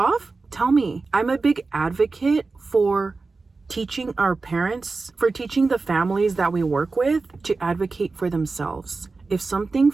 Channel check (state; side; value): quieter; left; 3.9 dB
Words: tell me. I'm a big advocate for teaching our parents, for teaching the families that we work with to advocate for themselves. If something